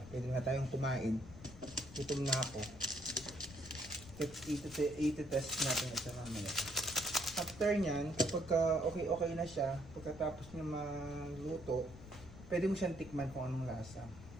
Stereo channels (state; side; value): noise; left; rumble, 16 dB below the sound